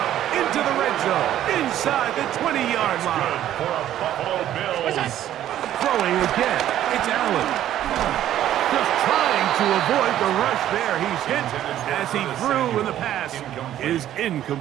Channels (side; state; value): left; quieter; 12.0 dB